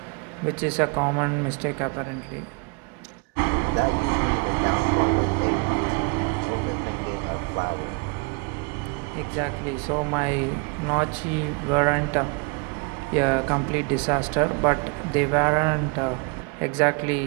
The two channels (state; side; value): quieter; left; 32.6 dB